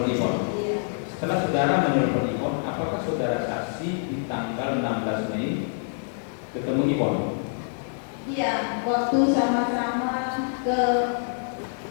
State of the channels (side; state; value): right; silent; 61 dB below the other